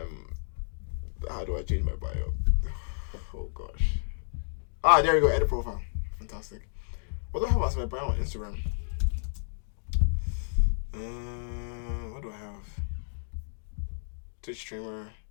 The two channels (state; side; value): silent; right; digital silence